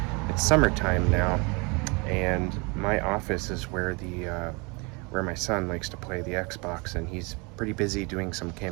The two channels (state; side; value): quieter; left; 29.5 dB